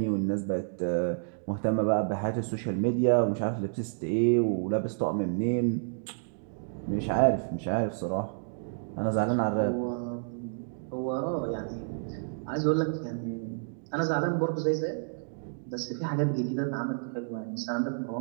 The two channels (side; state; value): left; silent; digital silence